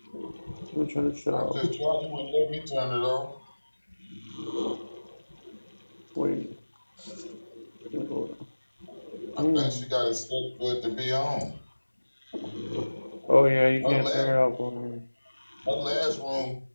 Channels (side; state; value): both; inverted; correlation -1.00